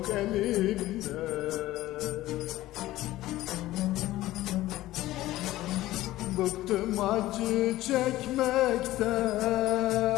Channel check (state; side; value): quieter; right; 16.1 dB